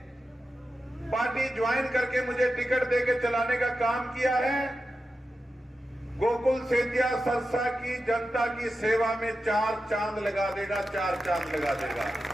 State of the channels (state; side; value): normal; both; correlation 0.91